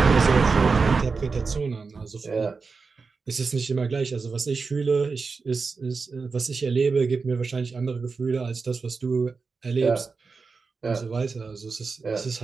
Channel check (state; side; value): quieter; left; 4.6 dB